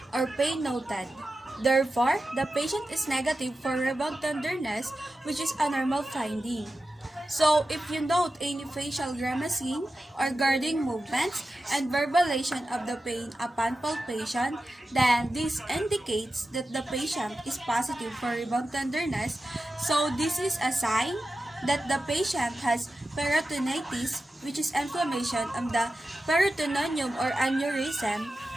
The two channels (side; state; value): both; normal; correlation 0.92